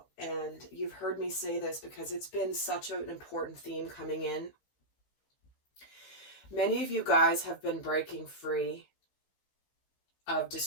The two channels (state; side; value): late; right; 15 ms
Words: and you've heard me say this because it's been such an important theme coming in, many of you guys have been breaking free of